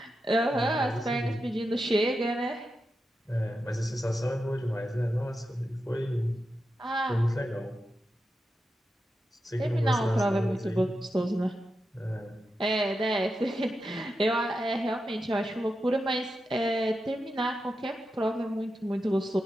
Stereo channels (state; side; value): normal; both; correlation 0.89